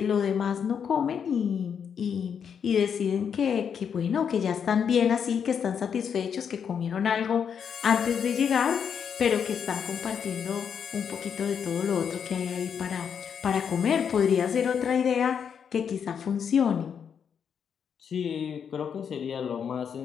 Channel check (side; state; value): right; quieter; 7.4 dB